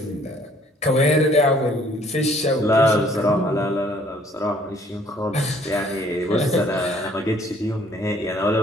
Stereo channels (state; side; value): normal; both; correlation 0.60